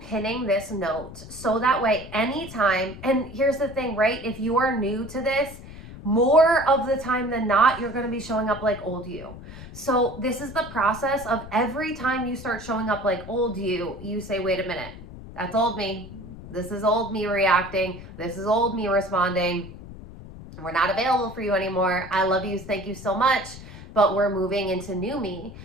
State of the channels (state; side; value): noise; left; rumble, 14 dB below the sound